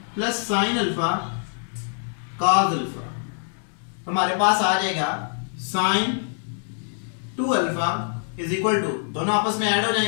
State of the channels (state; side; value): silent; right; 62 dB below the other